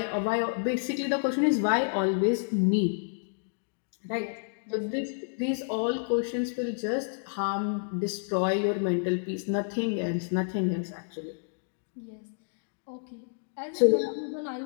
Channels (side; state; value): right; silent; digital silence